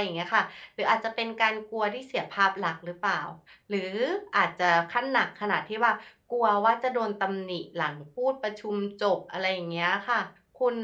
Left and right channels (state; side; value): identical; both; correlation 1.00